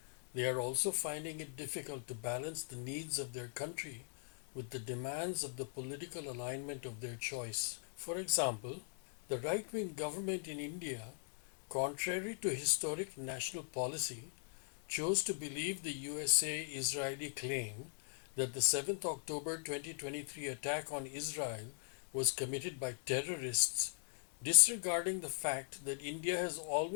they are also finding it difficult to balance the needs of their country with the demands of the political alignment of their choice. For example, the right-wing government in India, contrary to historic national policy, chose to believe the USA-Israeli claim that the 7th October 2023 attack on Israel was committed by terrorists, disregarding the fact that India has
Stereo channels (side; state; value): right; silent; 51 dB below the other